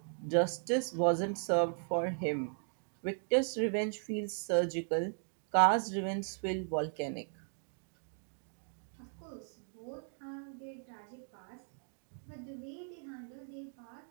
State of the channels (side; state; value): left; silent; 53 dB below the other